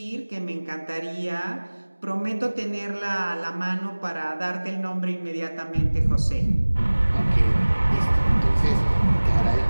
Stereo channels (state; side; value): inverted; both; correlation -1.00